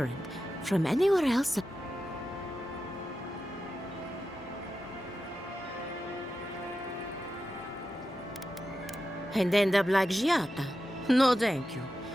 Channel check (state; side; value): normal; both; correlation 0.91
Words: from anywhere else. And end up like Giata. No, thank you.